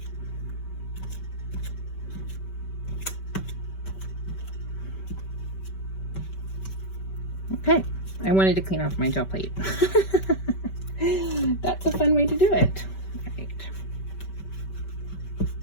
Okay, I wanted to clean off my gel plate. That's a fun way to do it. All right.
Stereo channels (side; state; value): right; late; 5.2 ms